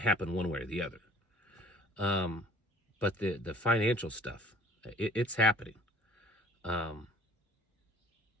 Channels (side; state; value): both; normal; correlation 0.52